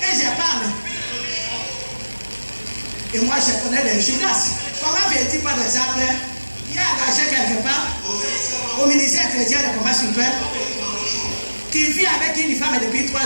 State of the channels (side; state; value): both; inverted; correlation -1.00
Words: et je parle. Et moi je connais les Judas. Comment vais-tu par exemple? Il y a engagé quelque part au ministère chrétien de combat super, qui vit avec une femme depuis 3